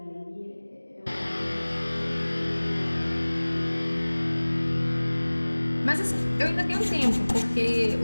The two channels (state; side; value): inverted; both; correlation -1.00